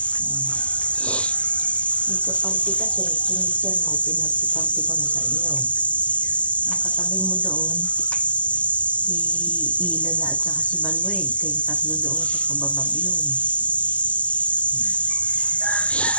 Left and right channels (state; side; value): late; right; 0.063 ms